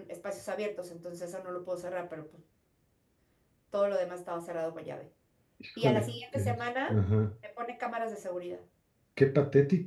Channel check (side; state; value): both; identical; correlation 1.00